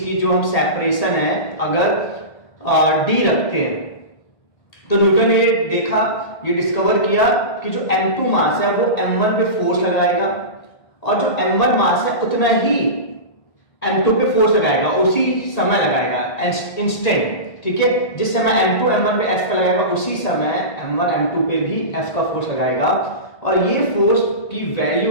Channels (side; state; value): right; late; 1.5 ms